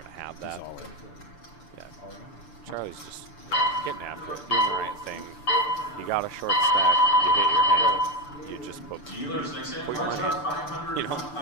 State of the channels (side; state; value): right; late; 6.8 ms